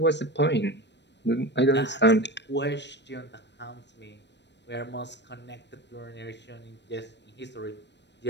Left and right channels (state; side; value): late; right; 0.51 ms